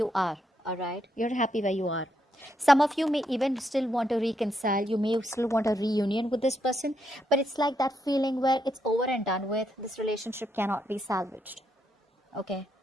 are. All right. You're happy where you are. Some of you may even still want to reconcile. You may still want a reunion with this person, but it's like that feeling where it's over and done with. This relationship cannot be salvaged. Okay,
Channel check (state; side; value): normal; both; correlation 0.79